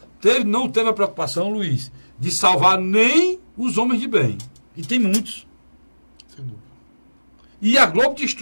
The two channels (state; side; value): inverted; both; correlation -1.00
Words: não teve a preocupação, Luiz, de salvar nem os homens de bem. E tem muitos. Sem dúvida. E a Globo